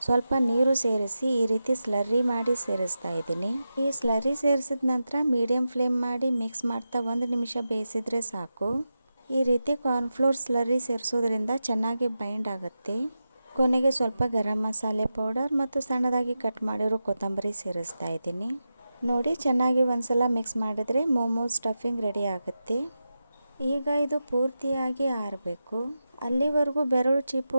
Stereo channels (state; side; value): inverted; both; correlation -0.91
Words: ಸ್ವಲ್ಪ ನೀರು ಸೇರಿಸಿ ಈ ರೀತಿ ಸ್ಲರ್ರಿ ಮಾಡಿ ಸೇರಿಸ್ತಾ ಇದ್ದೀನಿ. ಈ ಸ್ಲರ್ರಿ ಸೇರಿಸಿದ ನಂತರ ಮೀಡಿಯಂ ಫ್ಲೇಮ್ ಮಾಡಿ ಮಿಕ್ಸ್ ಮಾಡ್ತಾ 1 ನಿಮಿಷ ಬೇಯಿಸಿದರೆ ಸಾಕು. ಈ ರೀತಿ ಕಾರ್ನ್ಫ್ಲೋರ್ ಸ್ಲರ್ರಿ ಸೇರಿಸೋದ್ರಿಂದ ಚೆನ್ನಾಗಿ ಬೈಂಡ್ ಆಗುತ್ತೆ. ಕೊನೆಗೆ ಸ್ವಲ್ಪ ಗರಂ ಮಸಾಲೆ ಪೌಡರ್ ಮತ್ತು ಸಣ್ಣದಾಗಿ ಕಟ್ ಮಾಡಿರೋ ಕೊತ್ತಂಬರಿ ಸೇರಿಸ್ತಾ ಇದ್ದೀನಿ. ನೋಡಿ, ಚೆನ್ನಾಗಿ ಒಂದ್ಸಲ ಮಿಕ್ಸ್ ಮಾಡಿದರೆ ಮೋಮೋಸ್ ಸ್ಟಫಿಂಗ್ ರೆಡಿ ಆಗುತ್ತೆ. ಈಗ ಇದು ಪೂರ್ತಿಯಾಗಿ ಆರಬೇಕು. ಅಲ್ಲಿವರೆಗೂ ಬೆರಳು